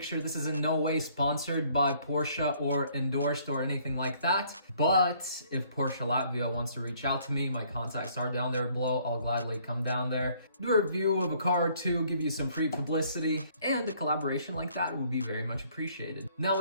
This is in no way sponsored by Porsche or endorsed or anything like that. But if Porsche Latvia wants to reach out to me, my contacts are down there below. I'll gladly come down there, do a review of a car or two, give you some free publicity, and a collaboration like that would be very much appreciated. Now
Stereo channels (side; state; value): both; inverted; correlation -0.62